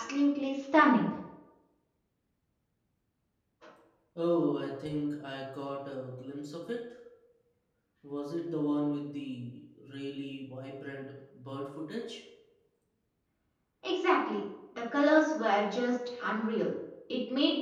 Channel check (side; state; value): both; identical; correlation 1.00